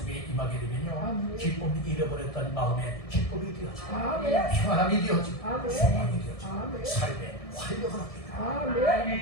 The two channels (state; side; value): late; right; 1.6 ms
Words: 임하게 되면요 기쁨이 잃어버렸던 마음에 기쁨이 되어지고 평안함이 되어지고 소망이 되어지고 삶의 활력을